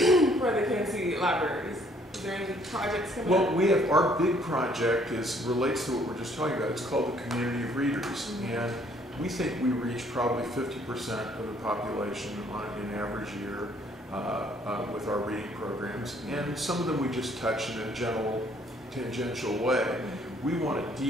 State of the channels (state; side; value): normal; both; correlation 0.63